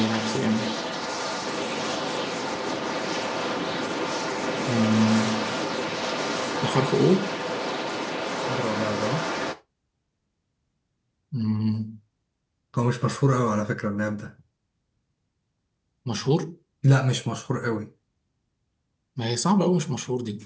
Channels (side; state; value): both; identical; correlation 1.00